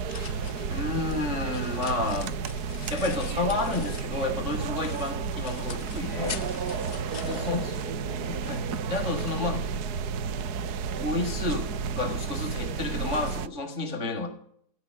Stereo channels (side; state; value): left; late; 4.7 ms